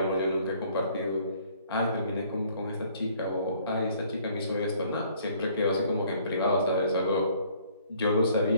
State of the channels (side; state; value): both; inverted; correlation -0.60